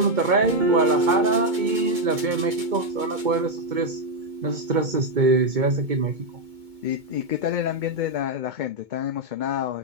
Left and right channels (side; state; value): left; late; 2.2 ms